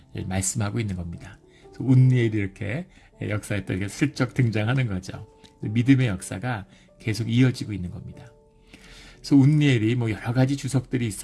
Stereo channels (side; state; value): both; identical; correlation 1.00